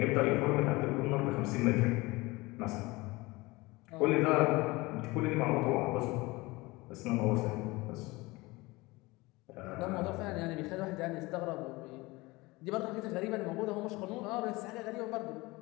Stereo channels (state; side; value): quieter; right; 22.2 dB